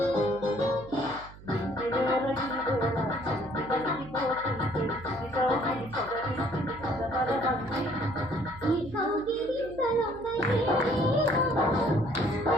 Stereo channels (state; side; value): noise; right; hum, 18 dB below the sound